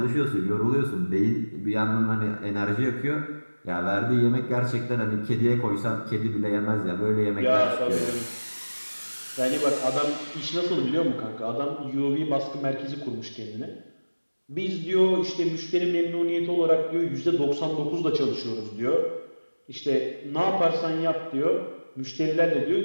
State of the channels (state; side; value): inverted; both; correlation -1.00